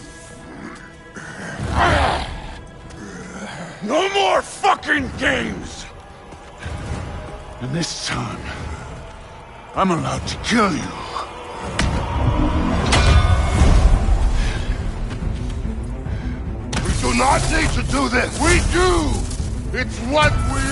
No more fucking games! And this time, I'm allowed to kill you. We do not need to do this! We do! It's what we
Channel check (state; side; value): identical; both; correlation 1.00